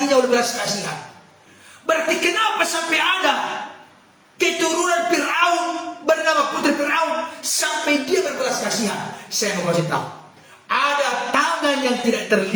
oleh belas kasihan. Berarti kenapa sampai ada keturunan Firaun bernama Putri Firaun sampai dia berbelas kasihan? Saya mau kasih tahu, ada tangan yang tidak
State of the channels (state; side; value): identical; both; correlation 1.00